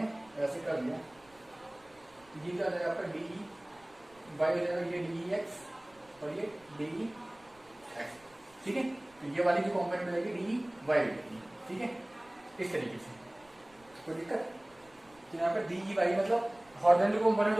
ऐसे कर दिया, ये क्या हो जाएगा आपका डी वाई हो जाएगा, ये डी एक्स और ये डी एक्स, ठीक है। तो ये वाली जो कॉम्पोनेंट मिलेगी डी वाई मिलेगी, ठीक है, इस तरीके से। कोई दिक्कत? तो यहाँ पे डी वाई मतलब हॉरिजॉन्टल कॉम्पोनेंट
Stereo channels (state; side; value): noise; right; rumble, 30 dB below the sound